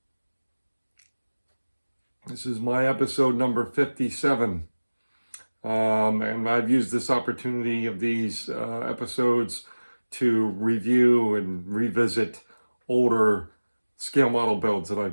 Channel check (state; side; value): inverted; both; correlation -1.00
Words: This is my episode number 57. And I've used this opportunity of these episodes to review and revisit older scale model builds that